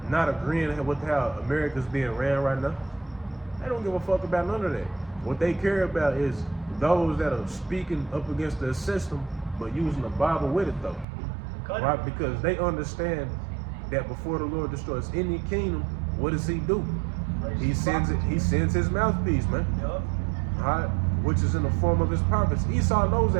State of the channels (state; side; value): drops out; left; at 11.1 s